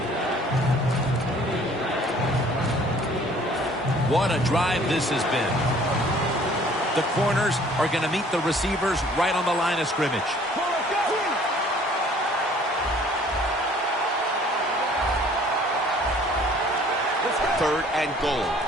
What a drive this has been. The corners are going to meet the receivers right on the line of scrimmage. Third and goal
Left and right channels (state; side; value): normal; both; correlation 0.55